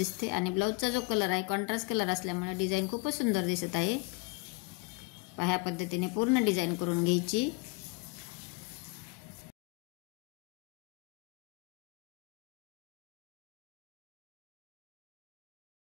आणि ब्लाऊजचा जो कलर आहे कॉन्ट्रास्ट कलर असल्यामुळे डिझाईन खूपच सुंदर दिसत आहे। ह्या पद्धतीने पूर्ण डिझाईन करून घ्यायची।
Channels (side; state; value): right; quieter; 25.8 dB